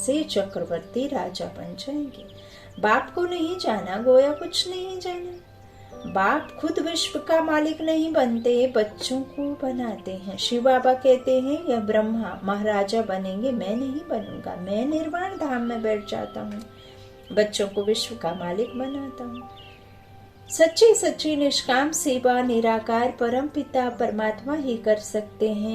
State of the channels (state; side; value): identical; both; correlation 1.00